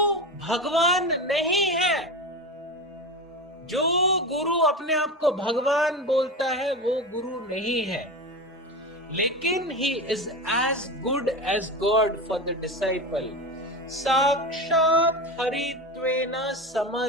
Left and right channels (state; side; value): normal; both; correlation 0.24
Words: भगवान नहीं है। जो गुरु अपने आप को भगवान बोलता है वो गुरु नहीं है, लेकिन he is as good as God for the disciple. साक्षात हरित्वेन